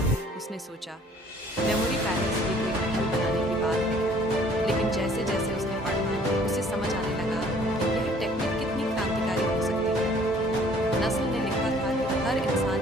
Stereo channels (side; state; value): both; normal; correlation 0.56